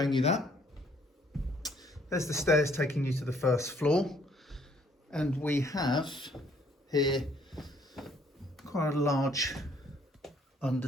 you that. There's the stairs taking you to the first floor. And we have here quite a large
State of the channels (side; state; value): both; normal; correlation 0.64